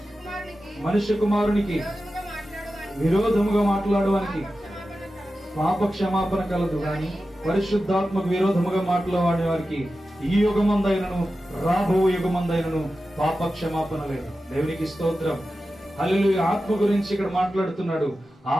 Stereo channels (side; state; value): both; normal; correlation 0.93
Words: మనుష్య కుమారునికి విరోధముగా మాట్లాడడానికి పాప క్షమాపణ కలదు గాని పరిశుద్ధాత్మకు విరోధముగా మాట్లాడే వారికి ఈ యుగమందైనను రాబో యుగమందైనను పాప క్షమాపణ లేదు. దేవునికి స్తోత్రం. హల్లెలూయా. ఆత్మ గురించి ఇక్కడ మాట్లాడుతున్నాడు.